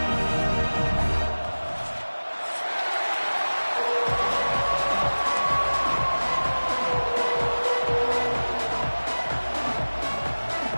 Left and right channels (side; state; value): both; inverted; correlation -1.00